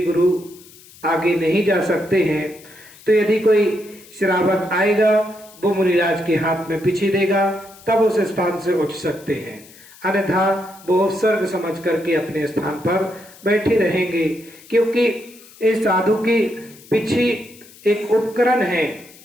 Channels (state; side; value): noise; left; hiss, 23 dB below the sound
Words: गुरु आगे नहीं जा सकते हैं। तो यदि कोई श्रावक आएगा वो मुनिराज के हाथ में पिच्छी देगा, तब उस स्थान से उठ सकते हैं, अन्यथा वो उपसर्ग समझ करके अपने स्थान पर बैठे रहेंगे। क्योंकि इस साधु की पिच्छी एक उपकरण है,